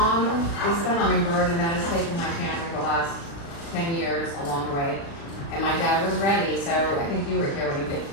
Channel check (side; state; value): right; late; 36 ms